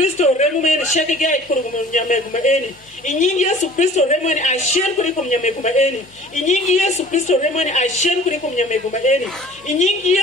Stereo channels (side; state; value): both; normal; correlation 0.48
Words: remu mene shake gai kuru kumnyameguma eni. Inyingi Yesu Kristo remu mene ashen kuri kumnyameguma eni. Inyingi Yesu Kristo remu mene ashen kuri kumnyameguma eni. Inyingi